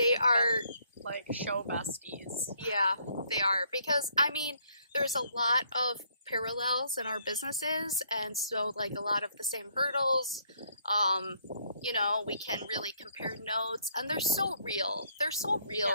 are, Like, show besties. yeah, they are. Because, I mean, there's a lot of parallels in our businesses, and so, like, a lot of the same hurdles. We can really compare notes, and they're so real. They're so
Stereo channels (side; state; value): both; inverted; correlation -0.68